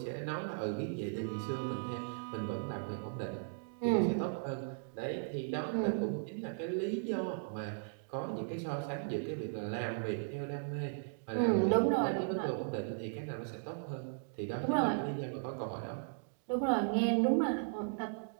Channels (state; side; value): silent; left; digital silence